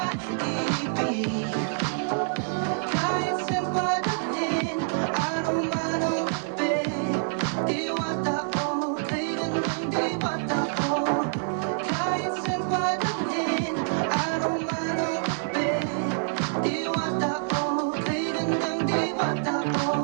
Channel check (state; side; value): silent; left; digital silence